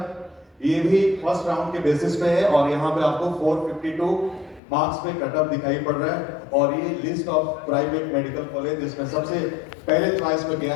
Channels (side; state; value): right; drops out; at 4.6 s